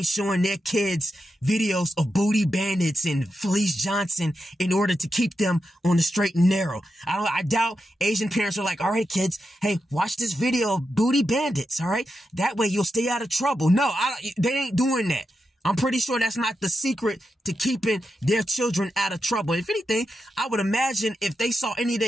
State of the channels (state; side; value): normal; both; correlation 0.87